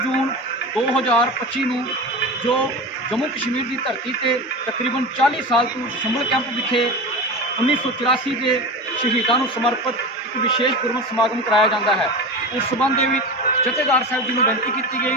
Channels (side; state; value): both; normal; correlation 0.28